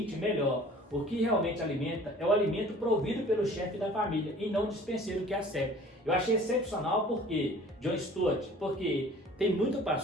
melhor. O que realmente alimenta é o alimento provido pelo chefe da família e não o dispenseiro que a serve. Eu achei excepcional porque John Stott, porque tem muito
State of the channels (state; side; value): normal; both; correlation 0.48